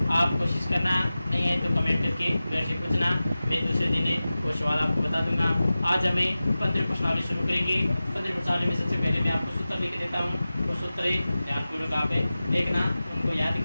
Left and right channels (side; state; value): both; inverted; correlation -0.96